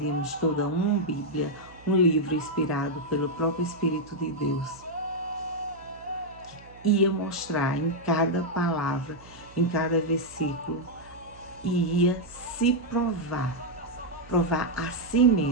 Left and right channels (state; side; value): noise; right; hum, 22 dB below the sound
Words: toda uma Bíblia, um livro inspirado pelo próprio Espírito de Deus, que ia mostrar em cada palavra, em cada versículo, e ia se provar a si